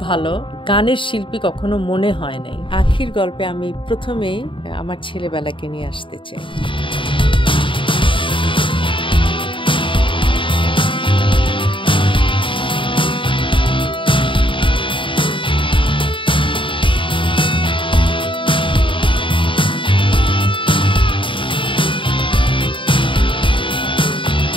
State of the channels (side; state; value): right; late; 0.25 ms